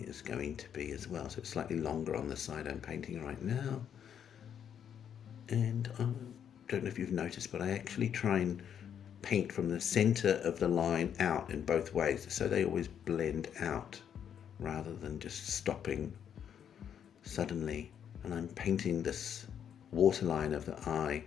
is going to be as well, so it's slightly longer on the side I'm painting right now. And I don't know if you've noticed, but I actually try and paint from the center of the line out in both ways, so they always blend out rather than just stopping suddenly. And I'm painting this waterline of the eye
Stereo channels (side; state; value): right; quieter; 8.7 dB